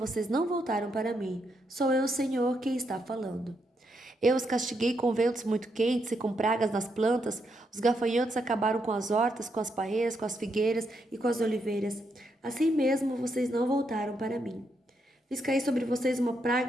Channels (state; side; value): normal; both; correlation 0.79